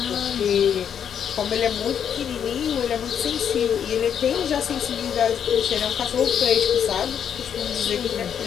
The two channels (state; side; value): quieter; right; 8.4 dB